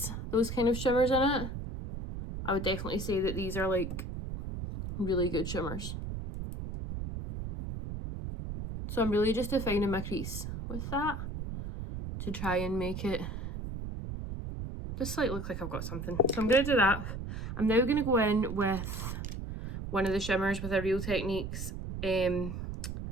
those kind of shimmers in it, I would definitely say that these are like really good shimmers. So I'm really just defining my crease with that to try and make it just like look like I've got something. So I'm going to do that. I'm now going to go in with one of the shimmers with a Real Techniques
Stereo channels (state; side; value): noise; right; rumble, 6 dB below the sound